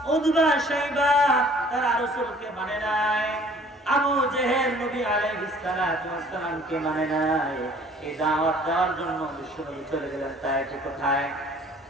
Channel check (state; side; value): normal; both; correlation 0.54